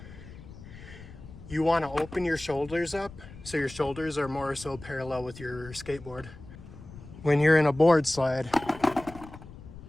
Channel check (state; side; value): noise; left; rumble, 16 dB below the sound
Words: you want to open your shoulders up so your shoulders are more so parallel with your skateboard. When you're in a board slide,